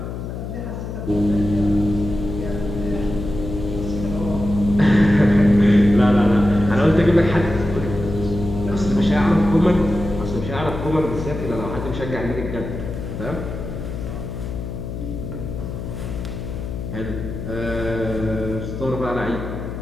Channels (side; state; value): left; noise; hum, 7 dB below the sound